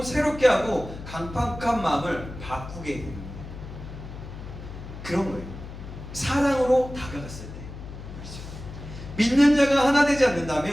새롭게 하고 강팍한 마음을 바꾸게 됩니다. 그런 거예요. 사랑으로 다가갔을 때. 그렇죠. 믿는 자가 하나 되지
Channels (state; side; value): noise; left; hum, 12 dB below the sound